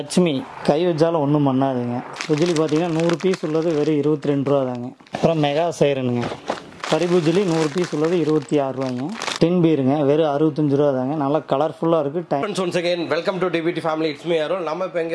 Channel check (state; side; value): identical; both; correlation 1.00